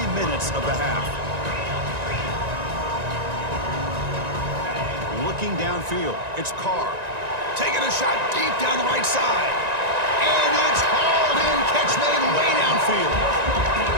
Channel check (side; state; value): left; late; 1.9 ms